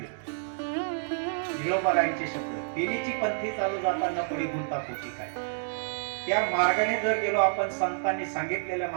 जिळोबारायांचे शब्द, तेनीची पंथी चालू जाताना पडी गुंता पोटी काय. त्या मार्गाने जर गेलो आपण, संतांनी सांगितलेल्या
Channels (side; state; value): left; silent; digital silence